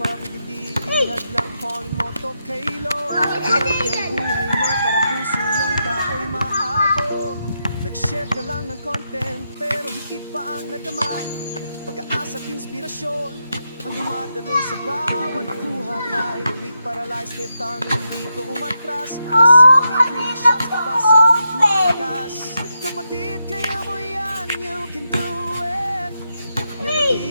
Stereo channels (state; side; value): inverted; both; correlation -0.84